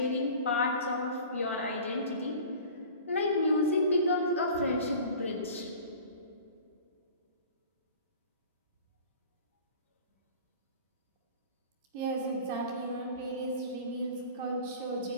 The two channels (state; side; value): inverted; both; correlation -0.42